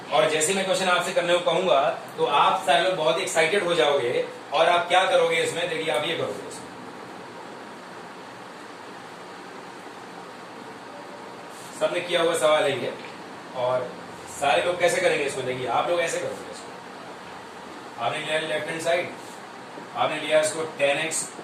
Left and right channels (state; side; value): identical; both; correlation 1.00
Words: और जैसे मैं क्वेश्चन आपसे करने को कहूंगा तो आप सारे लोग बहुत एक्साइटेड हो जाओगे और आप क्या करोगे इसमें, देखिए आप ये करोगे इसमें, सबने किया हुआ सवाल है ये, और सारे लोग कैसे करेंगे इसको, देखिए आप लोग ऐसे करोगे इसको। आपने लिया लेफ्ट हैंड साइड, आपने लिया इसको 10x